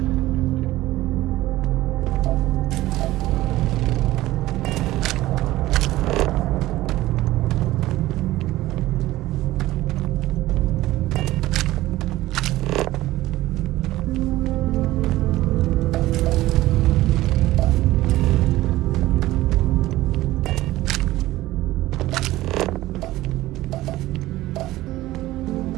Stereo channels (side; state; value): left; quieter; 16.6 dB